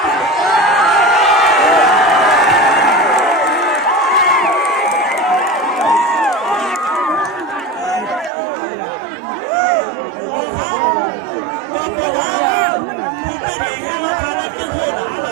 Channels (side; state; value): left; drops out; at 8.3 s